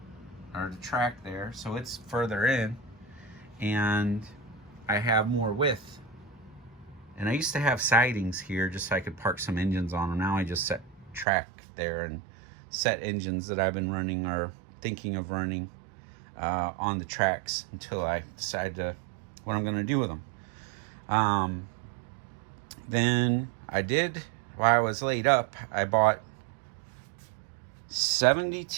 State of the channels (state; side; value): drops out; left; at 11.2 s